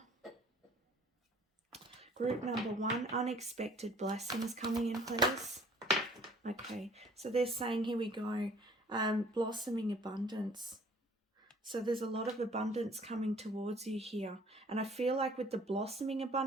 Group number one, unexpected blessings coming in, please. Okay, so they're saying, here we go, blossoming abundance. So there's a lot of abundance coming towards you here. And I feel like with the blossoming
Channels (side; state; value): both; normal; correlation 0.54